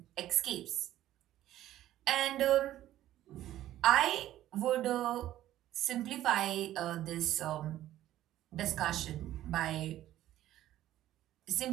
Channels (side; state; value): left; quieter; 13.5 dB